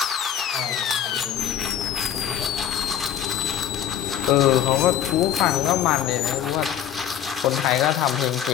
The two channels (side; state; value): right; quieter; 10.0 dB